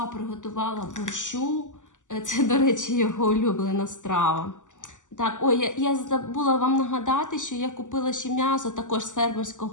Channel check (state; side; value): late; right; 0.86 ms